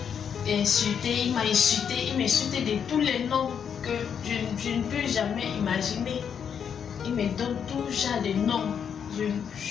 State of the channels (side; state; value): right; quieter; 7.6 dB